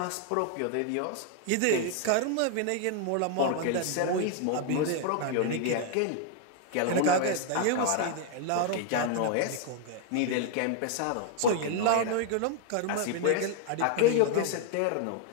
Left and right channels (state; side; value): different; both; correlation 0.00